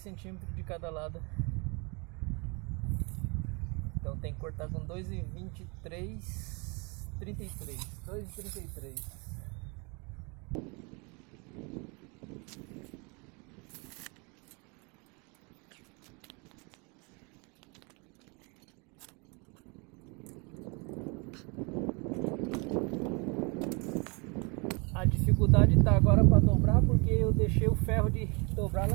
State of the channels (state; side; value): quieter; left; 30.9 dB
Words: centímetros de cada lado. Então tem que cortar com 2,23, 33, 2,33. A dificuldade tá agora para dobrar porque eu deixei o ferro de dobrar